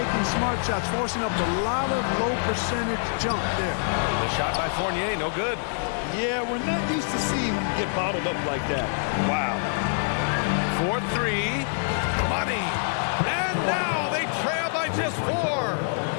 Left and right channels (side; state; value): right; silent; digital silence